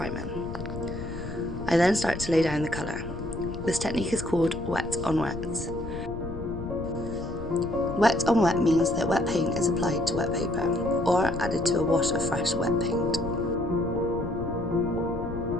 I then start to lay down the colour. This technique is called wet on wet. Wet on wet means that wet paint is applied to wet paper or added to a wash of fresh wet paint.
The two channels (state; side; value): noise; left; rumble, 9 dB below the sound